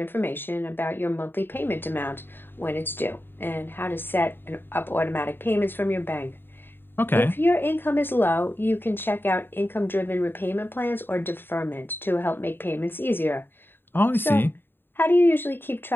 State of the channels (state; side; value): late; right; 0.10 ms